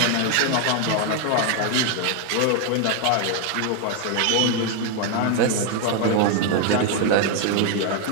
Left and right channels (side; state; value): both; different; correlation 0.01